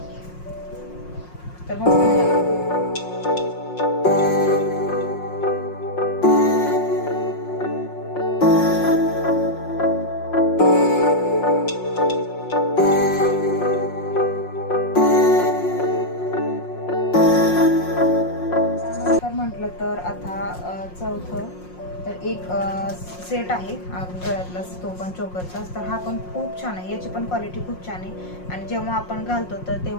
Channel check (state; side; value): late; right; 5.6 ms